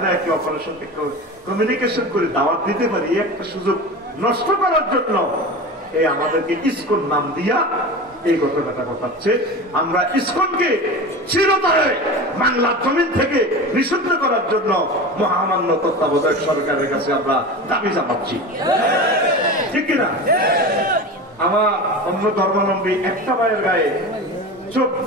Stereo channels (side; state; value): both; normal; correlation 0.30